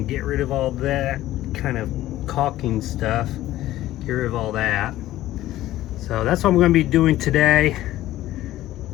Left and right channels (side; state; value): right; quieter; 14.9 dB